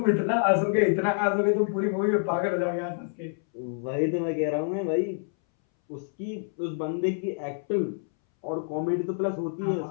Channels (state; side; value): silent; right; 60 dB below the other